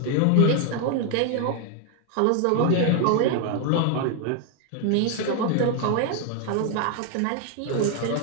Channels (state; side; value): different; both; correlation 0.01